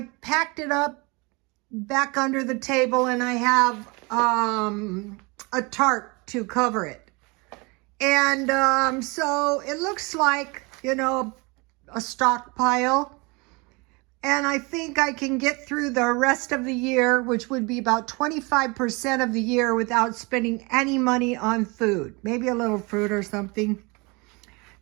packed it up back under the table, and I have a tarp to cover it. And so it looks like, a stockpile. And I think I can get through the rest of the year, which would be about 25% of the year, without spending any money on food. Maybe a little fruit or something.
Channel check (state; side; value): quieter; left; 27.6 dB